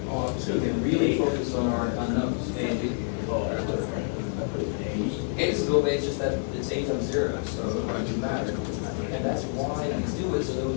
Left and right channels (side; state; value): right; silent; 60 dB below the other